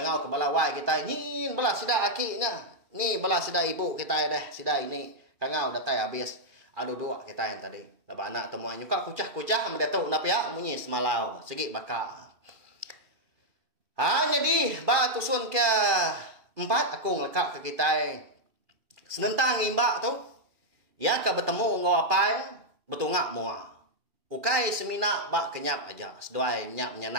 ke balawai kita nyin bala sida akinya ni bala sida ibu kita deh sida ini kangau datai habis aduh dua kita yang tadi laba anak temuan nyuka kucah mendatuk nap ya munyi semalau segi baka jadi ba tusun ke 4 aku ngelekak ke kita senentang imbak tu ya ke bertemu ngau apai betungak mua ukai semina ba kenyap aja seduai nyak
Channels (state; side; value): late; left; 2.4 ms